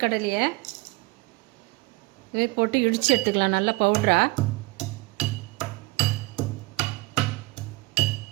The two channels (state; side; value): quieter; left; 23.0 dB